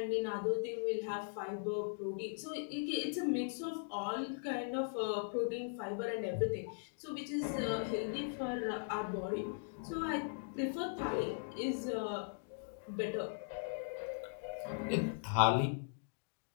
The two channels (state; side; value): silent; right; digital silence